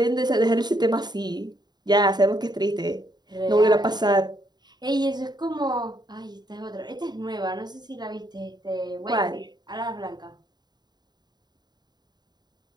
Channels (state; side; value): late; left; 0.20 ms